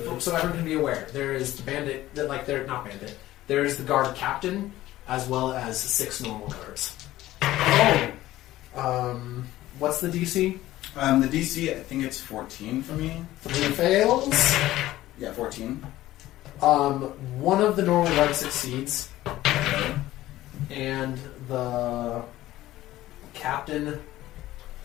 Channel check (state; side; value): quieter; right; 15.5 dB